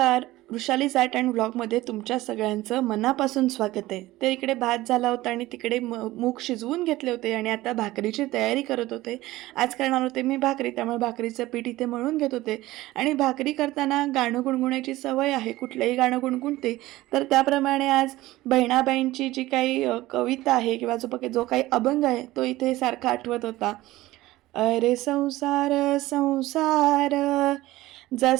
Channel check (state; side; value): quieter; left; 17.5 dB